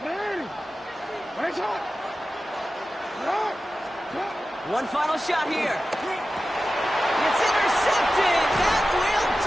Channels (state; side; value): normal; both; correlation 0.94